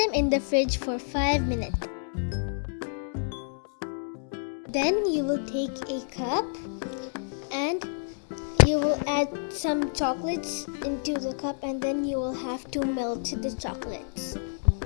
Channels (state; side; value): silent; right; digital silence